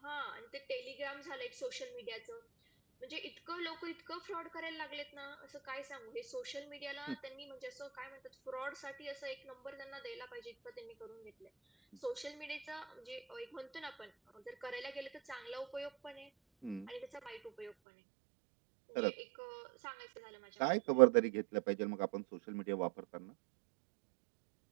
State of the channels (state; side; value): drops out; left; at 17.7 s